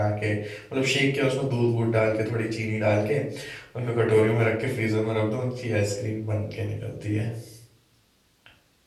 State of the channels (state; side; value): identical; both; correlation 1.00